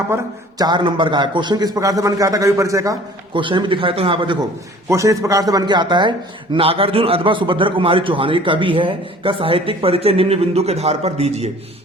पर? 4 नंबर का है। क्वेश्चन किस प्रकार से बन के आता है कवि परिचय का? क्वेश्चन भी दिखाया तो यहाँ पर देखो, क्वेश्चन इस प्रकार से बन के आता है। नागार्जुन अथवा सुभद्रा कुमारी चौहान, ये कवि है, का साहित्यिक परिचय निम्न बिंदु के आधार पर दीजिए।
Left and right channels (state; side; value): normal; both; correlation 0.49